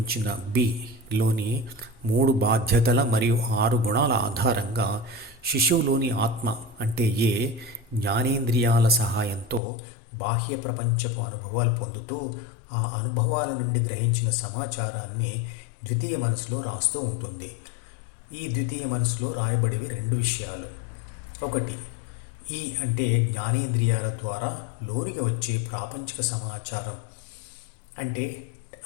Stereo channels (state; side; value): drops out; right; at 9.6 s